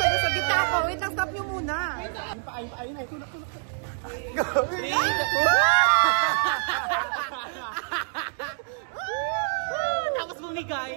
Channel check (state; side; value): silent; left; digital silence